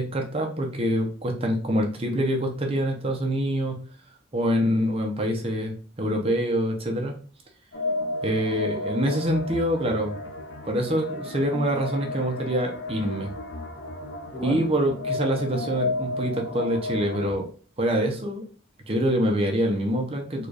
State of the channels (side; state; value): both; normal; correlation 0.50